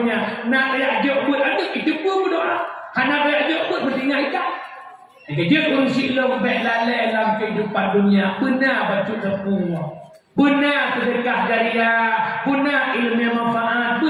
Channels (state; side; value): identical; both; correlation 1.00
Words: Nak reajak buat anak itu pun berdoa. Nak reajak buat bertinggal ikat. Kerja urusik lo baik lalai dalam kehidupan dunia. Benar baca tepung. Benar sedekah jariah. Benar ilmu yang manfaat.